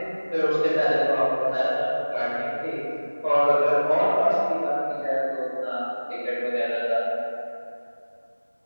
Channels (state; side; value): inverted; both; correlation -1.00